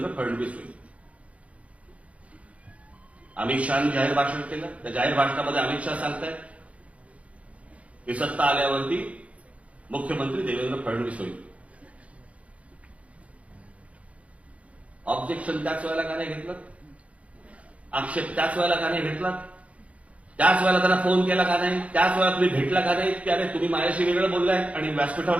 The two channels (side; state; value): left; late; 0.065 ms